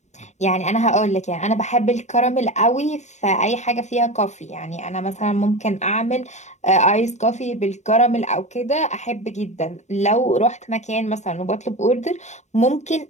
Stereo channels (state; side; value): late; right; 0.34 ms